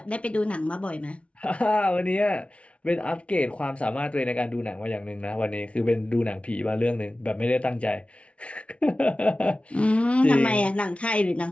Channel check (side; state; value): right; late; 0.062 ms